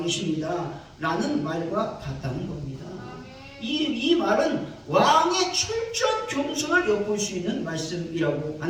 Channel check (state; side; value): identical; both; correlation 1.00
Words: 라는 말과 같다는 겁니다. 이 말은 왕의 철저한 겸손을 엿볼 수 있는 말씀이라고